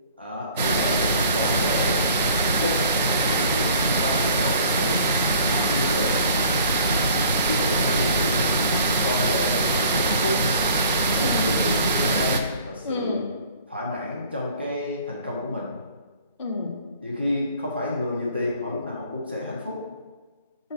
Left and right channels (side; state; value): both; inverted; correlation -0.51